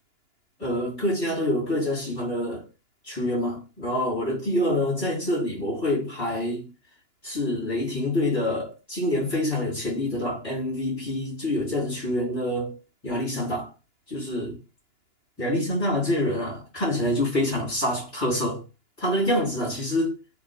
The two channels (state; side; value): late; right; 2.9 ms